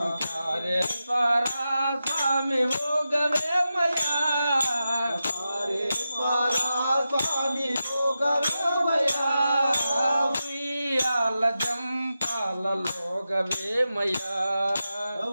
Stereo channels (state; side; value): inverted; both; correlation -0.90